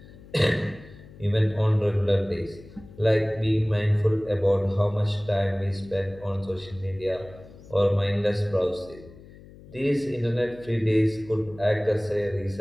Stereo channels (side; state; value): left; noise; hum, 20 dB below the sound